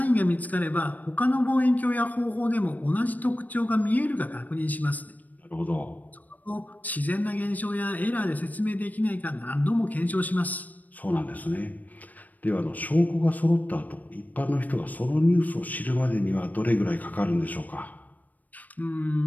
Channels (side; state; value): right; late; 0.079 ms